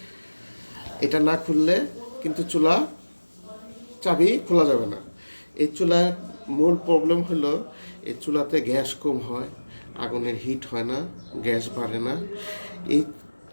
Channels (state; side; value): inverted; both; correlation -1.00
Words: এটা না খুললে কিন্তু চুলা চাবি খোলা যাবে না। এই চুলার মূল প্রবলেম হলো এই চুলাতে গ্যাস কম হয়, আগুনের হিট হয় না, গ্যাস বাড়ে না। এই